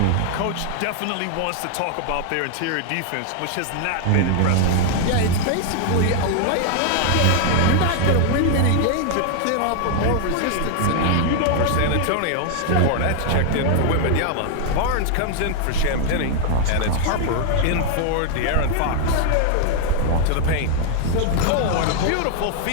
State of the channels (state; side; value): different; both; correlation 0.00